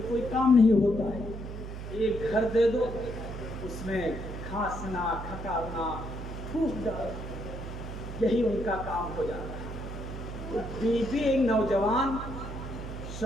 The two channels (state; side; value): noise; right; hum, 8 dB below the sound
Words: کوئی کام نہیں ہوتا ہے۔ ایک گھر دے دو، اس میں کھانسنا، کھکارنا، پھوک ڈالنا، یہی ان کا کام ہو جاتا ہے۔ تو بیوی ایک نوجوان